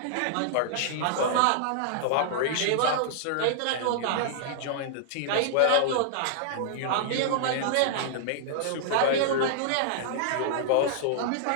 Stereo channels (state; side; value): different; both; correlation -0.01